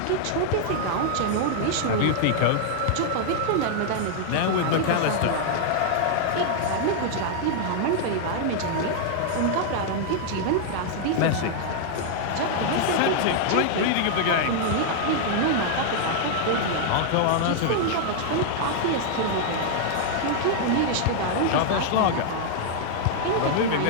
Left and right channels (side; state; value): both; different; correlation -0.01